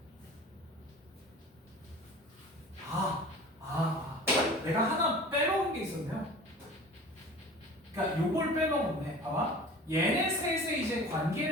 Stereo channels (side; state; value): both; normal; correlation 0.40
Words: 내가 하나 빼먹은 게 있었네요. 그러니까 요걸 빼먹었네. 봐봐. 얘네 셋의 이제